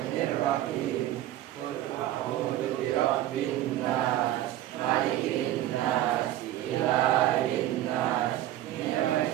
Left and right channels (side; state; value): left; quieter; 13.6 dB